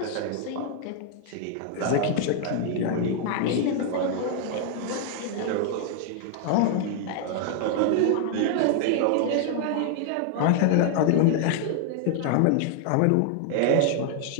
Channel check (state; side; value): different; both; correlation 0.00